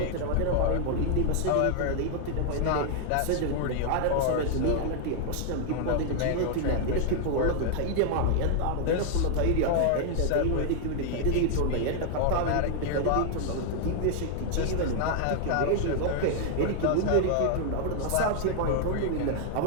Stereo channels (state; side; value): different; both; correlation 0.00